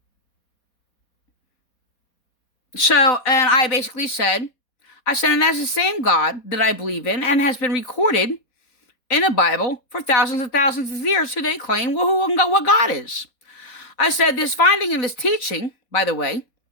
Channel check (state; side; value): late; right; 4.2 ms